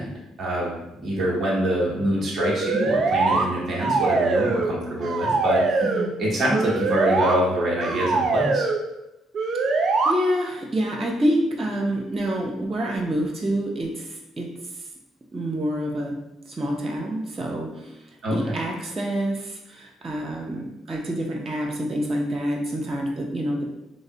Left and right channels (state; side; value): normal; both; correlation 0.75